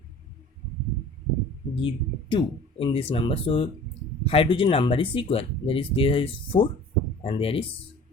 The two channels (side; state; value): both; normal; correlation 0.45